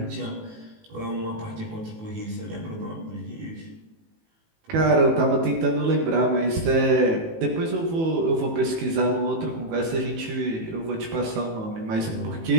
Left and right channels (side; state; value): left; late; 18 ms